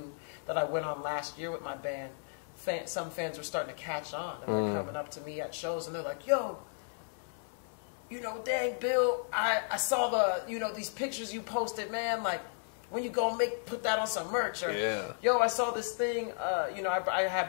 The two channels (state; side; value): silent; right; 55 dB below the other